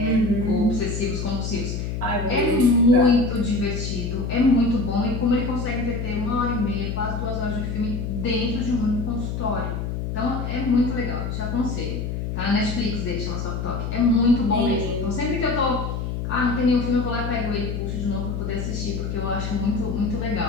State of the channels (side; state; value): left; noise; hum, 3 dB below the sound